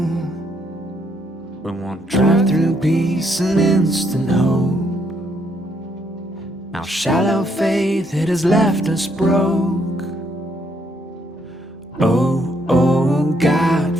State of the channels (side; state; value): both; normal; correlation 0.72